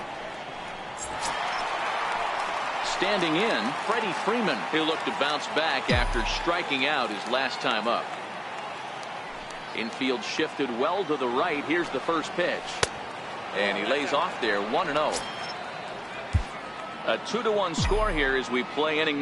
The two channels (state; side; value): identical; both; correlation 1.00